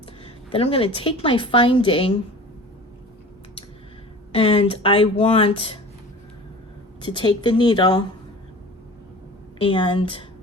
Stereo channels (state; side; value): normal; both; correlation 0.40